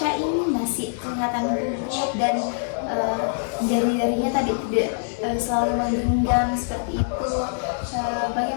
ini masih kelihatan gugup dan jari-jarinya tadi tidak selalu menggenggam seperti itu.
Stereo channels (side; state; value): right; silent; digital silence